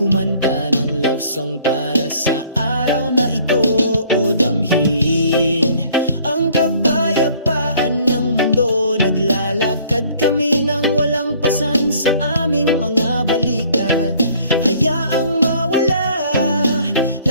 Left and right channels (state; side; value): inverted; both; correlation -0.57